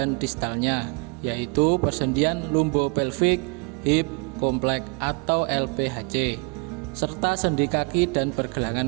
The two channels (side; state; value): left; quieter; 32.9 dB